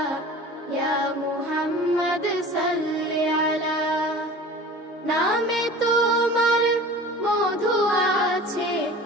ইয়া মুহাম্মদ সাল্লি আলা। নামে তোমার মধু আছে,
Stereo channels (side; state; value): both; normal; correlation 0.40